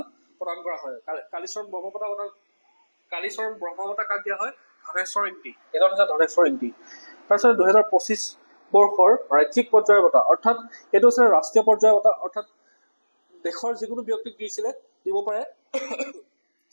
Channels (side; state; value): both; inverted; correlation -1.00